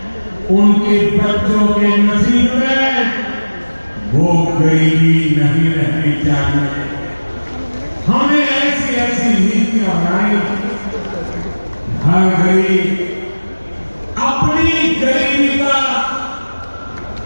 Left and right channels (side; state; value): both; inverted; correlation -1.00